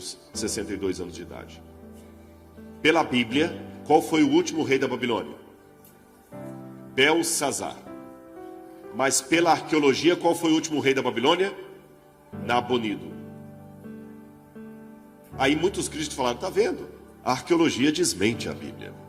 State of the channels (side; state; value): both; identical; correlation 1.00